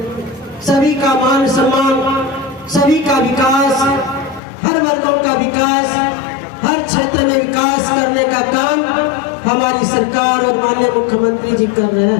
सभी का मान सम्मान, सभी का विकास, हर वर्गों का विकास, हर क्षेत्र में विकास करने का काम हमारी सरकार और माननीय मुख्यमंत्री जी कर रहे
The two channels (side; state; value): right; drops out; at 4.4 s